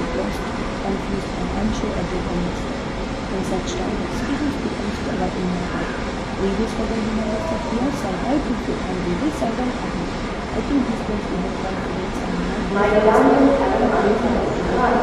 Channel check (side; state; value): both; identical; correlation 1.00